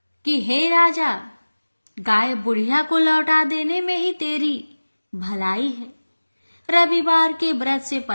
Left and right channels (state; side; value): inverted; both; correlation -1.00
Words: कि हे राजा, गाय बुढ़िया को लौटा देने में ही तेरी भलाई है। रविवार के व्रत से